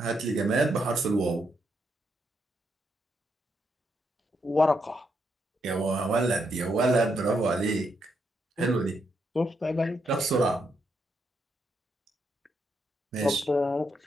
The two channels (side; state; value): both; normal; correlation 0.79